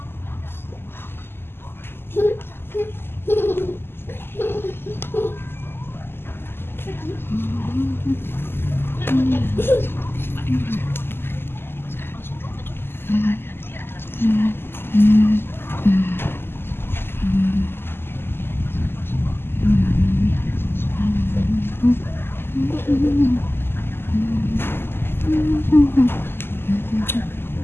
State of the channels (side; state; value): right; late; 0.11 ms